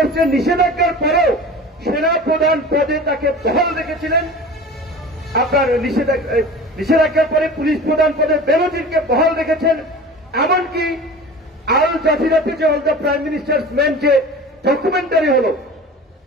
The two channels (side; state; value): both; normal; correlation 0.37